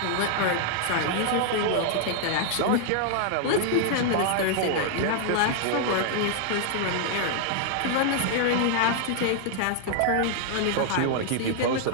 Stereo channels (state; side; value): different; both; correlation 0.00